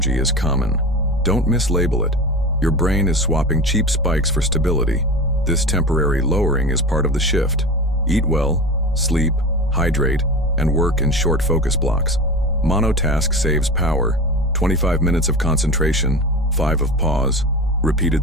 is common. Don't mislabel it. Your brain is swapping cheap spikes for stability. This temporary lowering is part of the shift. Eat well, sleep, hydrate, and work in short focus blocks. Monotask saves power. 25 minutes of concentration, 5 of pause,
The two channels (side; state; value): both; normal; correlation 0.29